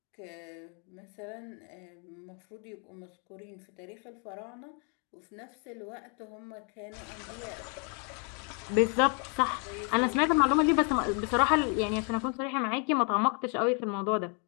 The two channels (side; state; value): right; quieter; 37.8 dB